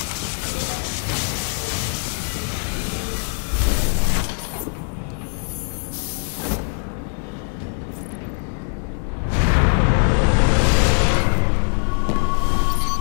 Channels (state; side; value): silent; right; 55 dB below the other